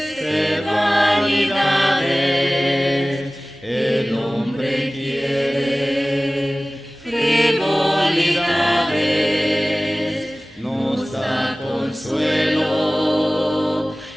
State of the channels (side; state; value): both; normal; correlation 0.98